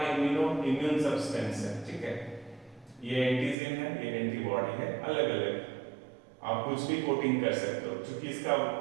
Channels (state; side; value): drops out; left; at 3.6 s